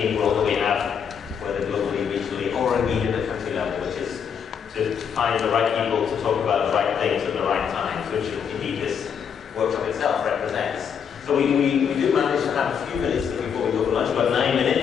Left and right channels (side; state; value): right; quieter; 7.4 dB